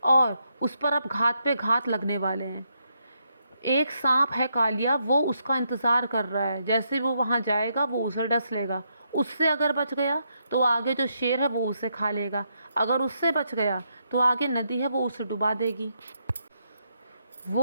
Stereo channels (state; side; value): inverted; both; correlation -0.79